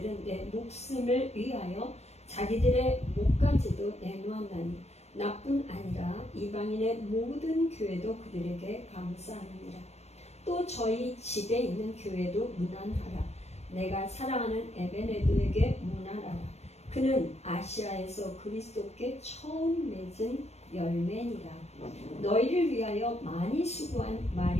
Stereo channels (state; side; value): late; right; 0.31 ms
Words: 내 목숨을 위하여 자기들의 목까지도 내놓았나니 나뿐 아니라 이방인의 모든 교회도 그들에게 감사하느니라. 또 저희 집에 있는 교회도 문안하라. 내가 사랑하는 에베네도에게 문안하라. 그는 아시아에서 그리스도께 처음 맺은 열매니라. 너희를 위하여 많이 수고한